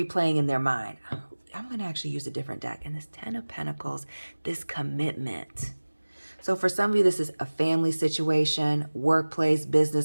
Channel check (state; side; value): inverted; both; correlation -1.00